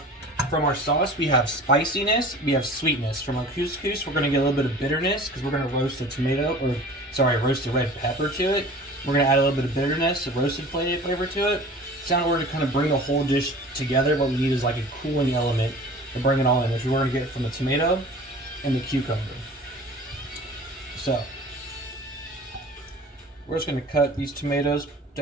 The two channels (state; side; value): normal; both; correlation 0.42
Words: from our sauce, we have spiciness, we have sweetness. From our couscous, we're going to get a little bit of bitterness because we're going to roast roast the red pepper to it. We're going to add a little bit of bitterness, a roasted flavor to it. So in order to kind of bring the whole dish together, what we need is like a cooling element to bring it all in, which we're going to get from the tomato and the cucumber. So, we're just going to cut these tomatoes